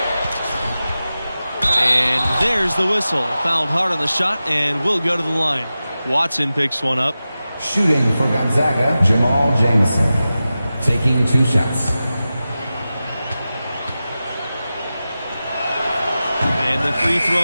And there's the whistle. Fouled hard on the shot and will go to the line. Watson picks one up. Shooting for Gonzaga, Jamal Jamison. Taking 2 shots. And the free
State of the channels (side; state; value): both; inverted; correlation -0.94